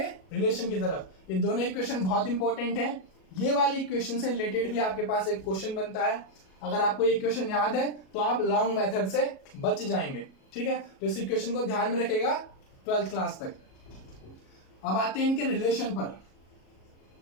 रिलेशन की तरफ। ये दोनों इक्वेशन बहुत इंपॉर्टेंट है। ये वाली इक्वेशन से रिलेटेड भी आपके पास एक क्वेश्चन बनता है। अगर आपको ये इक्वेशन याद है तो आप लॉन्ग मेथड से बच जाएंगे। ठीक है, तो इस इक्वेशन को ध्यान में रखेगा 12th क्लास तक। अब आते हैं इनके रिलेशन पर।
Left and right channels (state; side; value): late; right; 37 ms